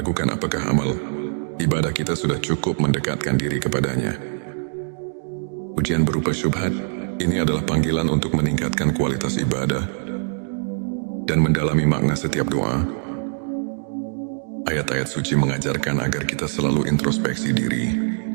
apakah amal ibadah kita sudah cukup mendekatkan diri kepadanya. Ujian berupa syubhat ini adalah panggilan untuk meningkatkan kualitas ibadah dan mendalami makna setiap doa. Ayat-ayat suci mengajarkan agar kita selalu introspeksi diri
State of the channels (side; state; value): left; silent; digital silence